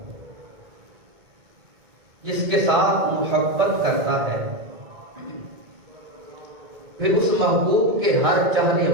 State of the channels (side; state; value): left; late; 2.2 ms